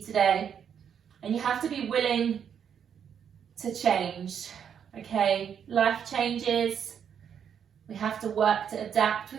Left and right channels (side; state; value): left; quieter; 8.1 dB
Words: And you have to be willing to change. Okay, life changes. We have to work to adapt